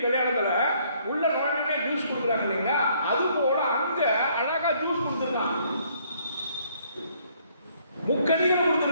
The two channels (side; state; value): both; inverted; correlation -0.65